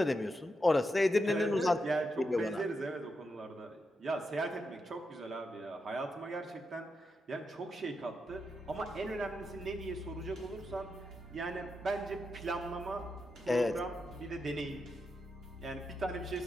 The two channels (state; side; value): normal; both; correlation 0.85